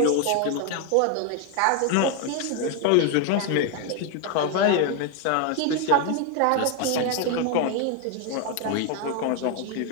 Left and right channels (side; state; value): both; different; correlation 0.01